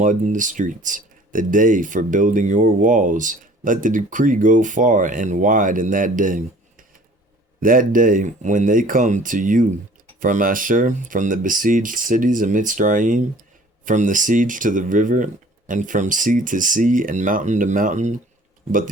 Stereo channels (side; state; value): both; normal; correlation 0.50